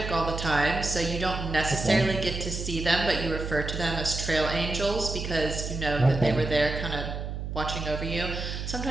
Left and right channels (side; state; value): right; noise; hum, 5 dB below the sound